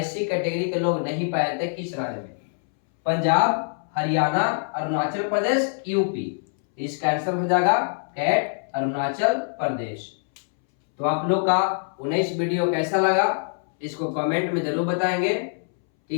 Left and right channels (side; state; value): right; silent; 62 dB below the other